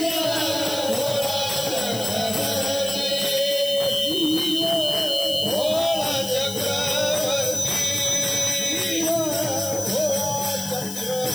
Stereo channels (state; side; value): noise; left; hiss, 9 dB below the sound